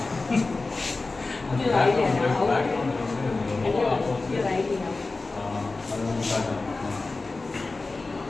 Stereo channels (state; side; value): quieter; right; 3.5 dB